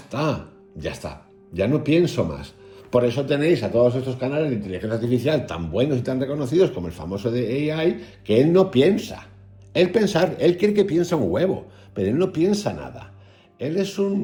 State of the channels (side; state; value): both; identical; correlation 1.00